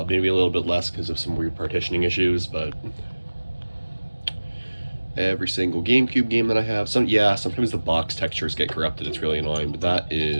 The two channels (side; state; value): both; inverted; correlation -1.00